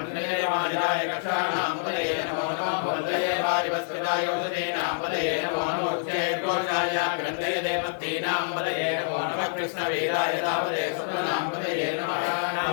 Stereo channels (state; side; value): silent; right; 60 dB below the other